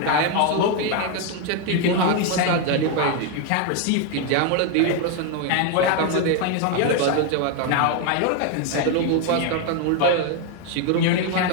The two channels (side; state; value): both; different; correlation 0.01